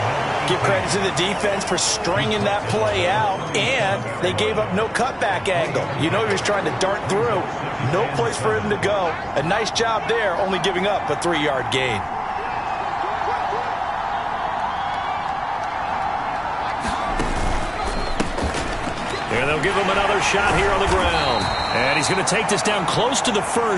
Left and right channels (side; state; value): both; identical; correlation 1.00